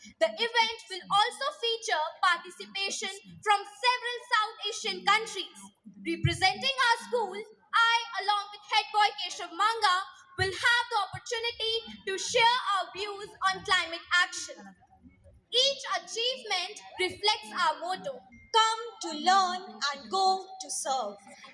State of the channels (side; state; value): both; identical; correlation 1.00